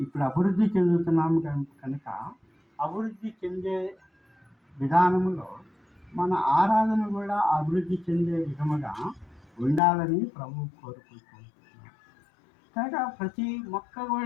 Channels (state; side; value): drops out; right; at 9.8 s